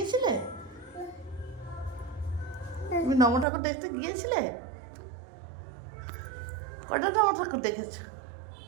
তুমি নম ঠাকুর দেখতে গিয়েছিলে? কটা নম ঠাকুর দেখেছো?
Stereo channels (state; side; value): drops out; left; at 3.5 s